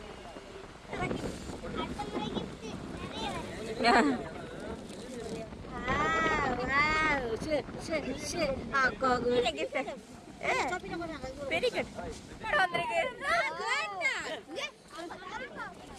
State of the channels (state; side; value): identical; both; correlation 1.00